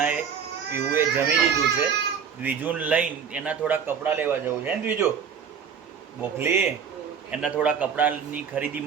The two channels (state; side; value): quieter; left; 7.0 dB